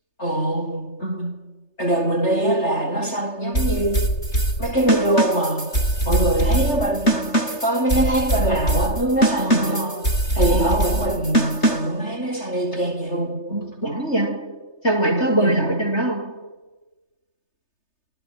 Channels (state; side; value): late; right; 3.3 ms